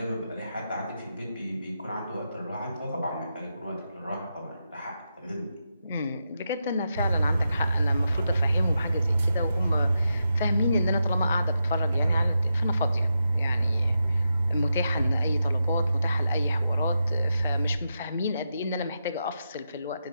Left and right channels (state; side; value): inverted; both; correlation -0.86